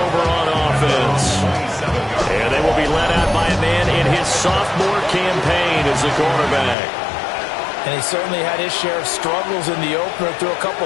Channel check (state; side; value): drops out; right; at 6.8 s